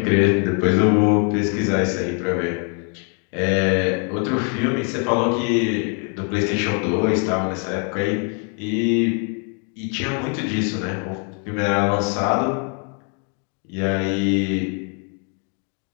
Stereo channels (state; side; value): quieter; right; 39.7 dB